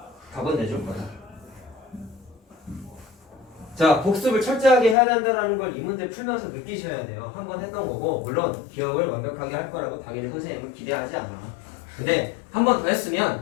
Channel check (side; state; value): right; drops out; at 5.0 s